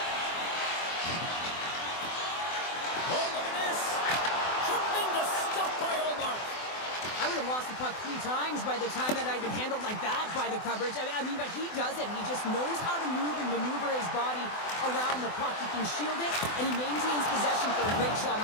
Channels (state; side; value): late; right; 24 ms